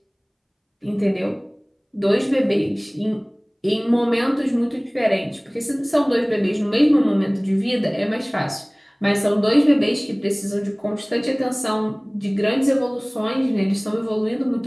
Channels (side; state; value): both; identical; correlation 1.00